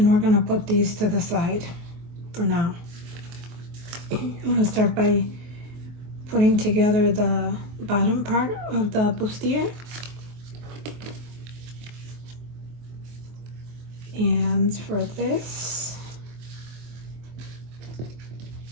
we're going to put these to the side for now. I'm going to start by putting together the bottom part of the bustier. And for this,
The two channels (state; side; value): late; left; 24 ms